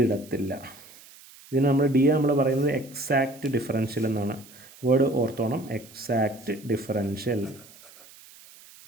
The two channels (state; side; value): noise; right; hiss, 22 dB below the sound